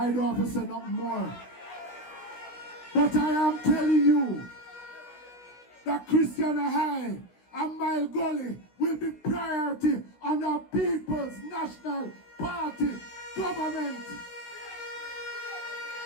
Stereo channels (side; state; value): right; late; 16 ms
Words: don't have to say nothing more. But I am telling you that Christiana High and Mile Gully will be priority on the People's National Party government.